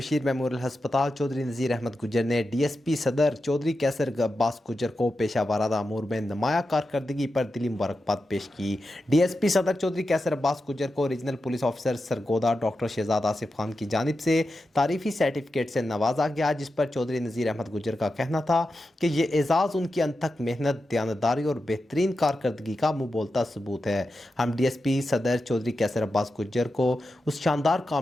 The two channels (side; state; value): both; normal; correlation 0.90